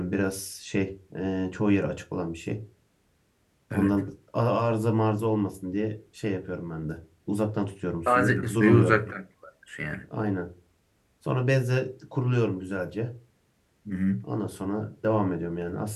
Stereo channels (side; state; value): both; identical; correlation 1.00